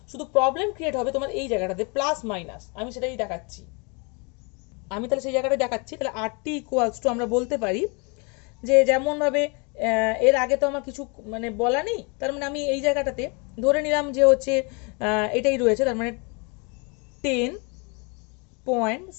শুধু প্রবলেম ক্রিয়েট হবে তোমার এই জায়গাটাতে প্লাস মাইনাস, আমি সেটাই দেখাচ্ছি। আমি তাহলে সেই জায়গাটা দেখাচ্ছি, তাহলে RT ইকুয়ালস টু আমরা বলতে পারি যে যেমনভাবে এর আগে তো আমার কিছু মানে বলা নেই, তার মানে আমি এই জায়গাটাতে ধরে নিলাম যে হচ্ছে এটাই রয়েছে, তার মানে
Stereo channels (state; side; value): quieter; right; 32.4 dB